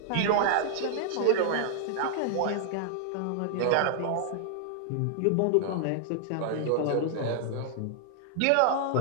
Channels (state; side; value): different; both; correlation -0.01